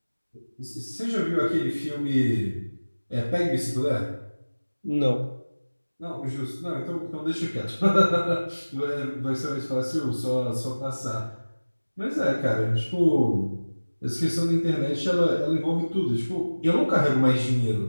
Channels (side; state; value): both; inverted; correlation -1.00